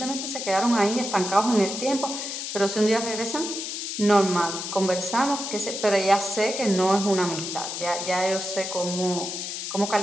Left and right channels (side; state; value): left; noise; hiss, 5 dB below the sound